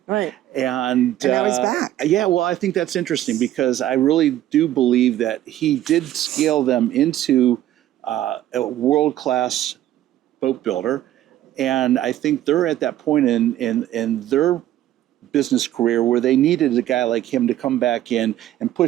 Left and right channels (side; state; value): left; quieter; 13.1 dB